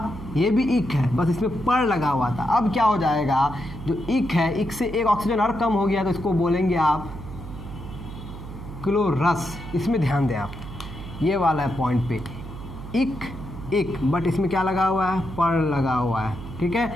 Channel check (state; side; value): noise; right; hum, 12 dB below the sound